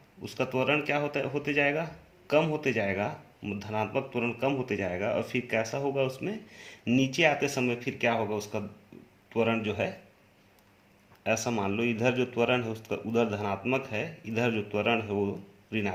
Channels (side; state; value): both; identical; correlation 1.00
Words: उसका त्वरण क्या होते जाएगा, कम होते जाएगा, धनात्मक त्वरण कम होते जाएगा। और फिर कैसा होगा, उसमें नीचे आते समय फिर क्या होगा, उसका त्वरण जो है, ऐसा मान लो इधर जो त्वरण है उसका उधर धनात्मक है, इधर जो त्वरण है वो